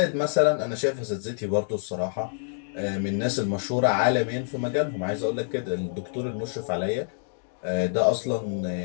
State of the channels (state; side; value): silent; right; digital silence